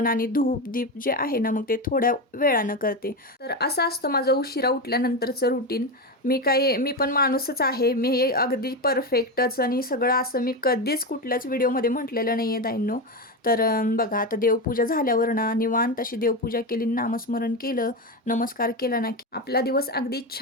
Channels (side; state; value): both; normal; correlation 0.15